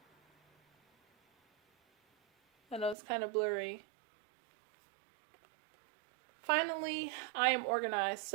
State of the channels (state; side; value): drops out; left; at 3.0 s